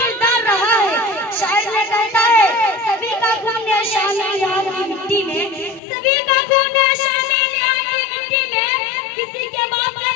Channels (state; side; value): drops out; right; at 5.8 s